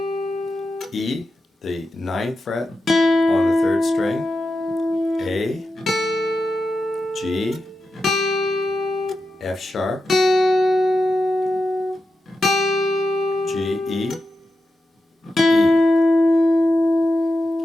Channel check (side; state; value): both; normal; correlation 0.89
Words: E, the 9th fret on the 3rd string, A, G, F sharp, G, E, E.